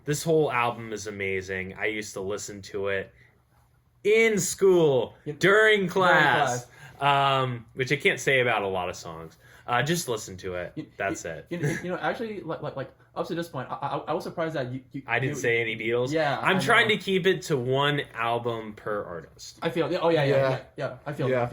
This whole album is amazing. I used to listen to it in school, during class. Which I can't say about a lot of songs. Just listen to it. That's it. Actually, like up to this point, I was surprised that you I didn't say any Beatles. Yeah, I'm trying to keep it to 1 album per artist. I feel. Oh yeah. I feel that.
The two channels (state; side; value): identical; both; correlation 1.00